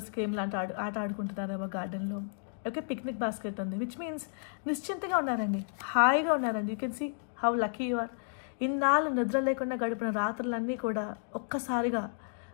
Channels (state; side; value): silent; right; digital silence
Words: గేమ్ లాంటి ఆట ఆడుకుంటున్నారేమో గార్డెన్లో. ఓకే, పిక్నిక్ బాస్కెట్ ఉంది, విచ్ మీన్స్ నిశ్చింతగా ఉన్నారండి, హాయిగా ఉన్నారండి. You can see how lucky you are. ఇన్నాళ్ళు నిద్ర లేకుండా గడిపిన రాత్రులన్నీ కూడా ఒక్కసారిగా